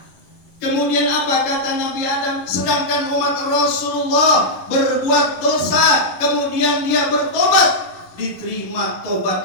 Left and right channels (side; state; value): right; late; 11 ms